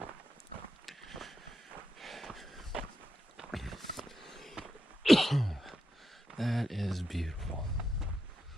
That is beautiful.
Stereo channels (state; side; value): normal; both; correlation 0.86